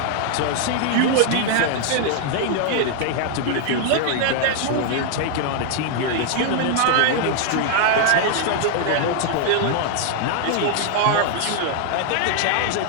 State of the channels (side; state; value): both; different; correlation 0.00